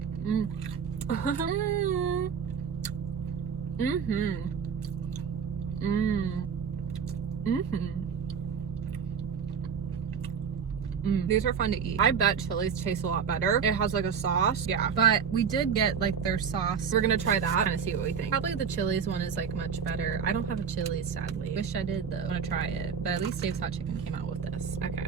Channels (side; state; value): left; quieter; 6.8 dB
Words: These are fun to eat. I bet Chili's tastes a lot better. It has like a sauce. Yeah. But we did get like their sauce. We're gonna try that and see what we think. Probably the Chili's one is like much better. I don't have a Chili's, sadly. Wish I did though. I wanna try it. But at least Dave's hot chicken came out with this. Okay,